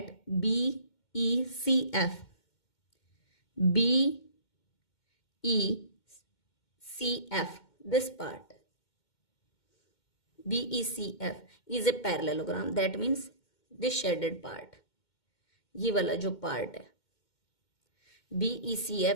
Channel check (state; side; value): late; right; 2.2 ms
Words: B E C F this part BECF is a parallelogram. That means this shaded part, ये वाला जो part है